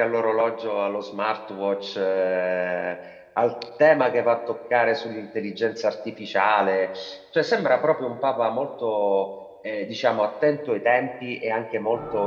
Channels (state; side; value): identical; both; correlation 1.00